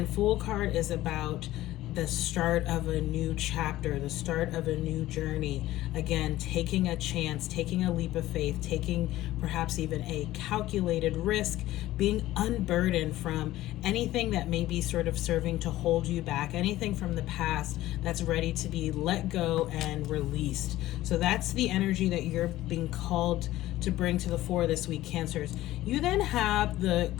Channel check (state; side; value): quieter; right; 15.6 dB